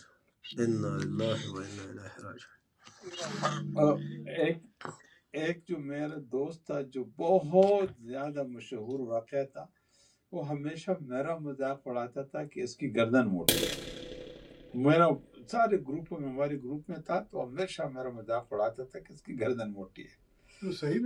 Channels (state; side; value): identical; both; correlation 1.00